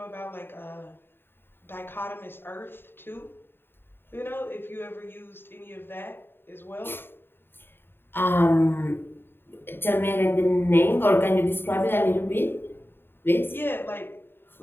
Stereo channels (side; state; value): right; late; 0.10 ms